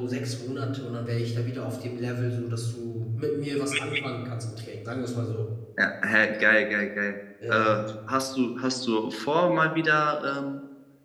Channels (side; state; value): both; identical; correlation 1.00